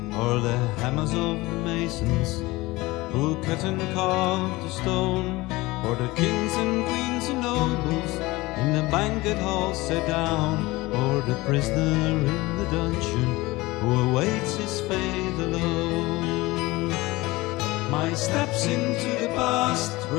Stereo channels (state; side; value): quieter; right; 20.8 dB